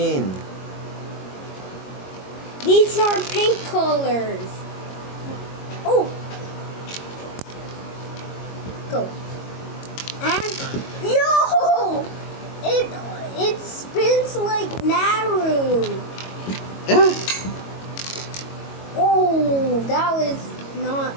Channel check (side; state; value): right; late; 22 ms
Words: These are pink colors. Oh. Go. And yo, it spins like Naru. Yeah. Oh, that was not